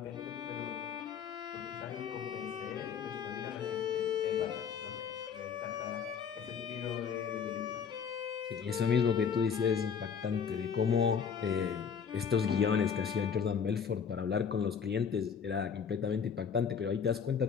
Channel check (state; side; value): quieter; right; 6.9 dB